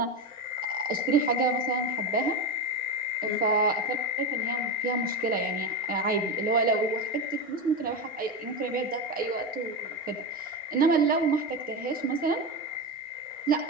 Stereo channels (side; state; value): both; normal; correlation 0.16